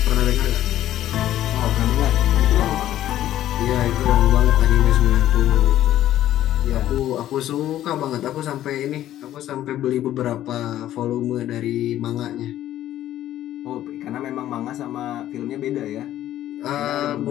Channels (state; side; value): quieter; right; 12.8 dB